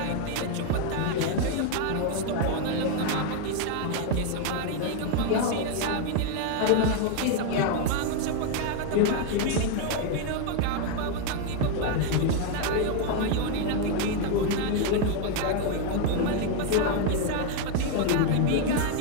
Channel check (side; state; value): both; different; correlation 0.00